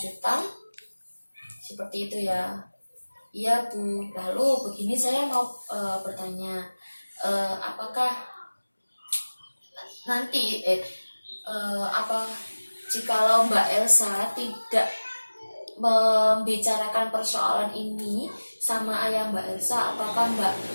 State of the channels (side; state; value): both; inverted; correlation -1.00